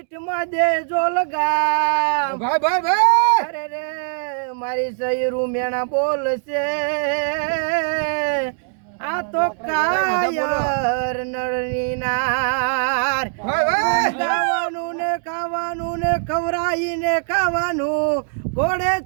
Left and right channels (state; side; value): silent; left; digital silence